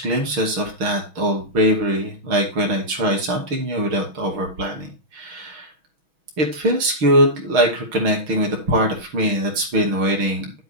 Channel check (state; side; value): late; left; 6.2 ms